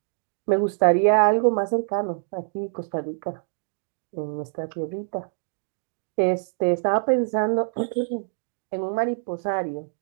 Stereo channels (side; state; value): left; silent; digital silence